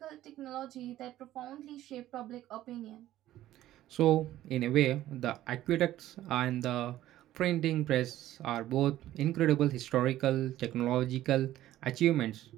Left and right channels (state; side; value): quieter; left; 14.0 dB